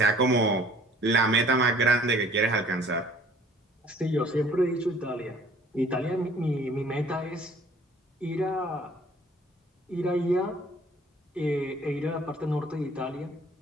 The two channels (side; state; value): both; normal; correlation 0.54